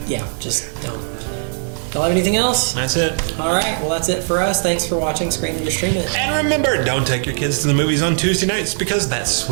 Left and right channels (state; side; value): silent; left; 67 dB below the other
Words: Just don't. Don't have anything else? That's it. All right, well, that's it for us. Thanks for watching Screen and Stream It. And remember, don't take your kids to the movies on Tuesday nights because that's